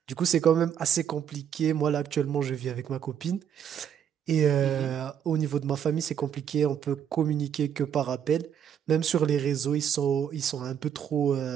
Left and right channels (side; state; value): left; quieter; 8.8 dB